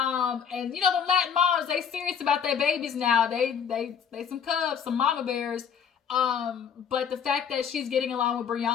the Latin moms, they serious about their babies now. They some cubs, some mama bears. But the fact that she's getting along with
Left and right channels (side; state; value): right; quieter; 7.5 dB